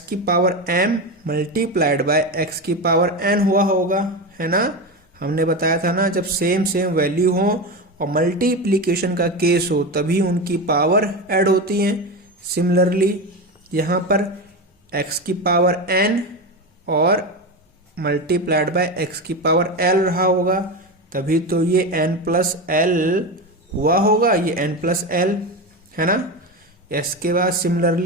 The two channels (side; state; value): both; normal; correlation 0.19